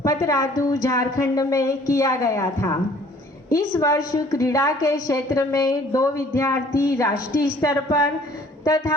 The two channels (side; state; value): both; normal; correlation 0.55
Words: पतरातू झारखंड में किया गया था। इस वर्ष क्रीड़ा के क्षेत्र में 2 विद्यार्थी राष्ट्रीय स्तर पर